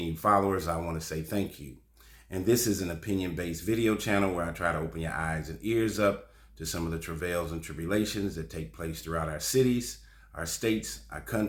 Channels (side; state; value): both; identical; correlation 1.00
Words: followers, I want to say thank you. And this is an opinion-based video channel where I try to open your eyes and ears up to some of the travails and tribulations that take place throughout our cities, our states, our